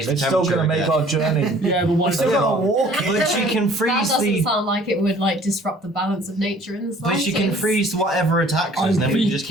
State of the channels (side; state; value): both; normal; correlation 0.53